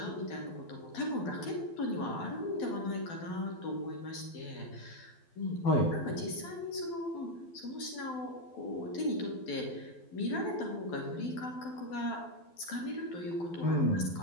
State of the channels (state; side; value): late; right; 12 ms